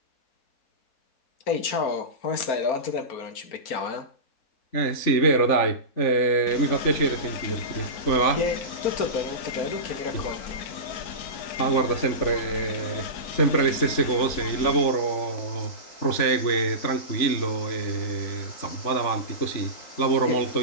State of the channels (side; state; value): right; late; 3.5 ms